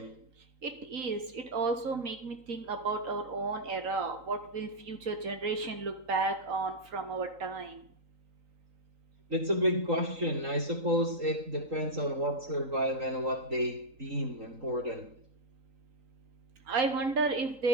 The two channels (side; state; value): left; late; 3.9 ms